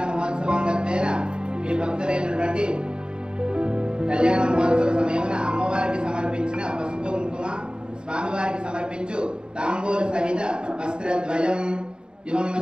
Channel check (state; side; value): late; left; 0.049 ms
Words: మహోత్సవం గతేన మీ భక్తులైనటువంటి కళ్యాణ మహోత్సవ సమయమున అమ్మవారికి సమర్పించిన పసుపు కుంకుమ, స్వామివారికి సమర్పించు తాంబూల సహిత వస్త్రద్వయం ఇవం